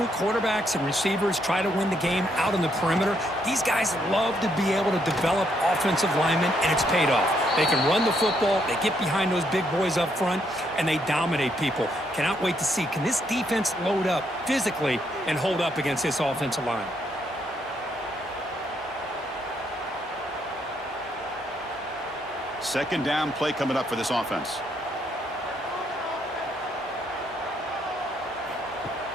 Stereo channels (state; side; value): normal; both; correlation 0.74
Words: quarterbacks and receivers, try to win the game out on the perimeter. These guys love to be able to develop offensive linemen, and it's paid off. They can run the football, they get behind those big boys up front, and they dominate people. Cannot wait to see, can this defense load up physically and hold up against this offensive line? Second down play coming up for this offense.